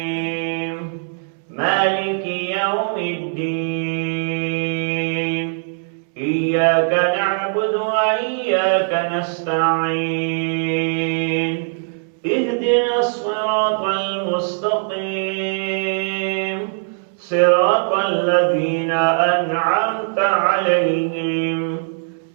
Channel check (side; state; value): left; silent; 65 dB below the other